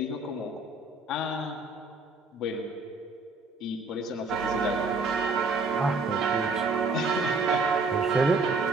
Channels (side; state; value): left; quieter; 3.5 dB